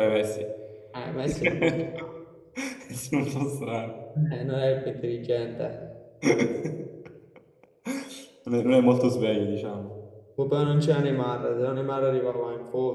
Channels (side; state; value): both; identical; correlation 1.00